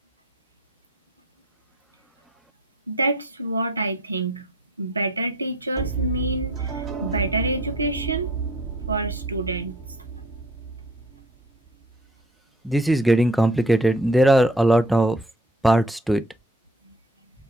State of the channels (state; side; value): normal; both; correlation 0.51